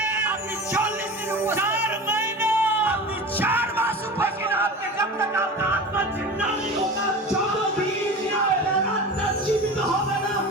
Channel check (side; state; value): both; normal; correlation 0.32